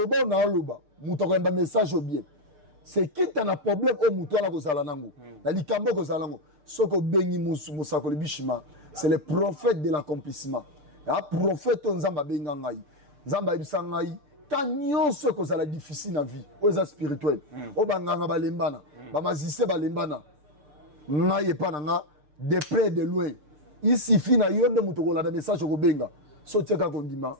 na aloba, muto ko message au bien. C'est qui t'as un problème au muto na ko zala nango. Na likambo ko zala nango. Soko bengi musako le bishima, c'est le prophète de l'accomplissement. Un prophète nzamba benga ngai. Nzamba ibisa ngai. Tant ce que ça la difficile dans la vie, aux spirituels, au banganga balembana, bamazise balembana, n'aie pas nanga de près de loin. Il suffit na yonde mutokola da message au benga. Sotieka kondima,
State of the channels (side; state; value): left; late; 6.7 ms